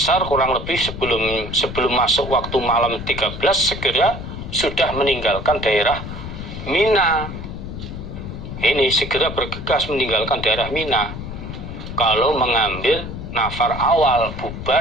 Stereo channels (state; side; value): noise; left; rumble, 8 dB below the sound